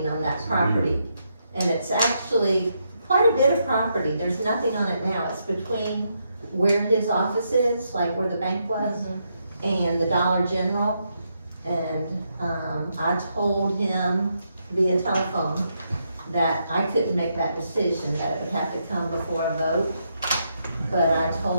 on that property. And it's actually quite a bit of property, there's nothing on it now, it's between where his office is, like where the bank was, and the Dollar General. And, I told him via telephone that I couldn't make that decision, that it would have to come before a vote. But I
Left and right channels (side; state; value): both; inverted; correlation -0.80